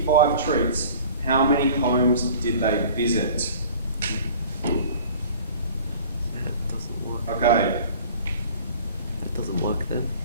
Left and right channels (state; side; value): inverted; both; correlation -0.46